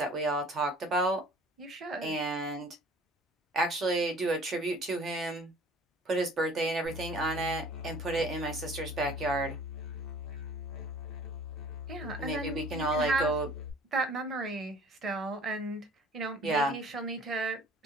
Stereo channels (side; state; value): both; normal; correlation 0.49